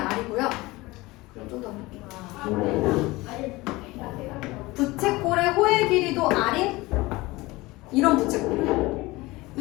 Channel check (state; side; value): quieter; right; 21.0 dB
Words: 그럼 좀 더 볼게요. 부채꼴의 호의 길이도 R인 이런 부채꼴이에요.